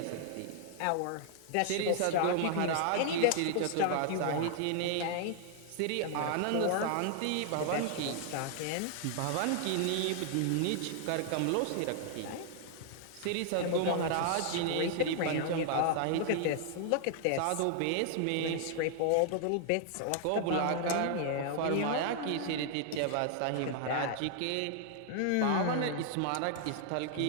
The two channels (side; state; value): both; different; correlation 0.00